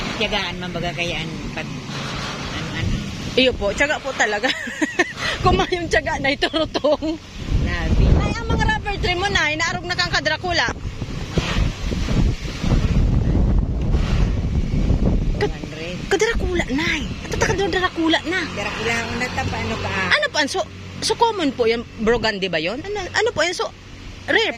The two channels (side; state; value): both; identical; correlation 1.00